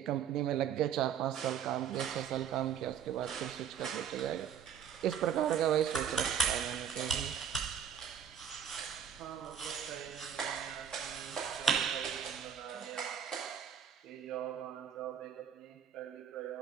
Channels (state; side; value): quieter; left; 8.3 dB